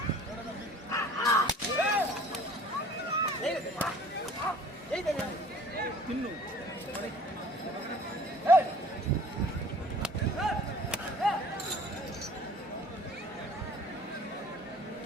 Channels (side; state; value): both; normal; correlation 0.49